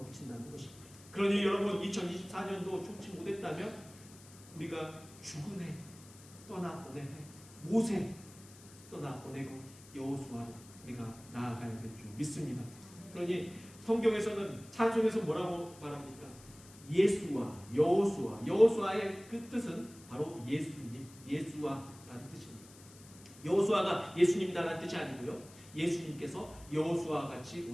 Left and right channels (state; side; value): noise; left; hiss, 21 dB below the sound